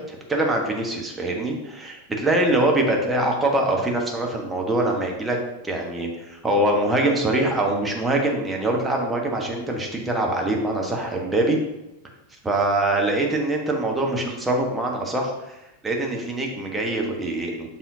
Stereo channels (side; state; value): both; normal; correlation 0.32